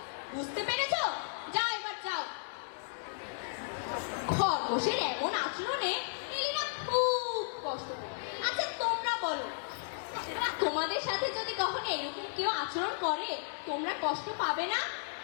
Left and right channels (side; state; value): right; silent; digital silence